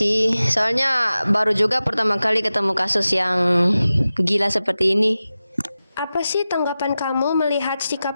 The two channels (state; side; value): inverted; both; correlation -0.94